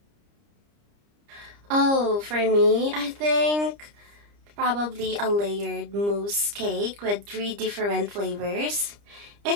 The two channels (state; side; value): late; left; 30 ms